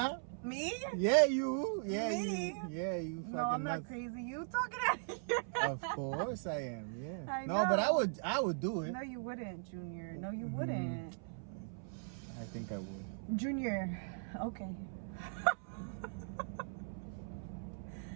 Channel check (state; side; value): silent; left; 52 dB below the other